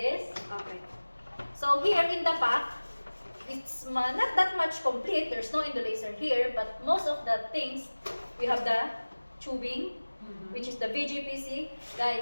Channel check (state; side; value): inverted; both; correlation -1.00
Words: Okay. So here in the pack, it's not that much complete. There's no indolacer here, but most of the things, we have the tubing, which is the VGPC.